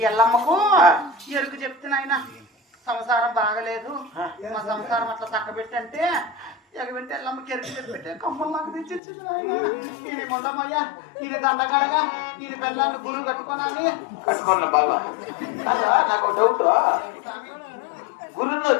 ఎల్లమ్మకు ఎరుకు చెప్తున్నాయన సంసారం బాగలేదు, మా సంసారం అట్లా చక్కబెట్టంటే ఎగబెట్టి ఎల్లమ్మకి ఎరుకు చెప్పితే కమ్మలు నాకు తెచ్చిచ్చింది నాయన. ఈయన మొండమయ్యా, ఈయన దండగడగా, ఈయన పెళ్ళాన్ని గురువు కట్టుకోనాలి. కట్టుకోండి బాబా. కాదా నాకు డౌట్, గురువులో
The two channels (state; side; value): drops out; right; at 9.0 s